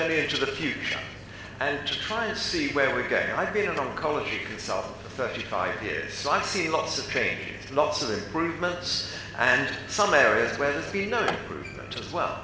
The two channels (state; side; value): identical; both; correlation 1.00